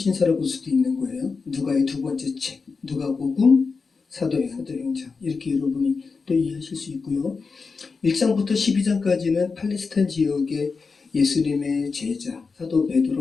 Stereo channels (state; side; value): quieter; right; 4.7 dB